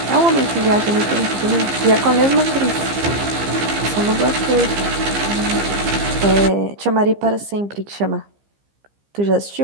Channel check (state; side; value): late; left; 15 ms